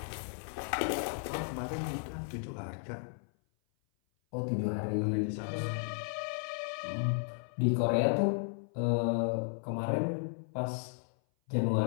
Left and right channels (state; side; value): silent; right; 55 dB below the other